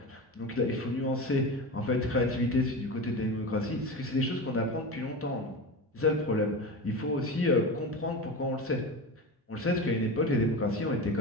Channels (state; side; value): normal; both; correlation 0.26